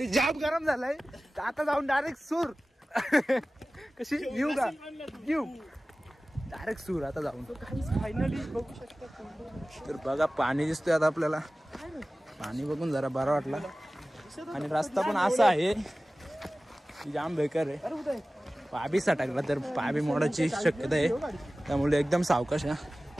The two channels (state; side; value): normal; both; correlation 0.97